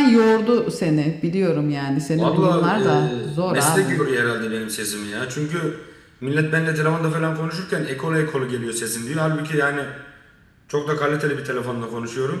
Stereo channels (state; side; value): identical; both; correlation 1.00